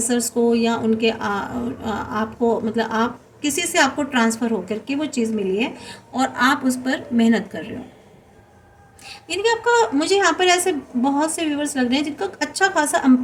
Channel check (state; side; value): identical; both; correlation 1.00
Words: को या उनके आपको मतलब आप किसी से आपको ट्रांसफ़र होकर के वो चीज़ मिली है और आप उस पर मेहनत कर रहे हो। यानी कि आपका, मुझे यहाँ पर ऐसे बहुत से व्यूवर्स लग रहे हैं जिनका अच्छा खासा